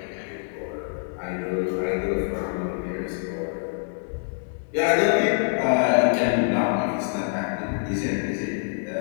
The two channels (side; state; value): right; silent; digital silence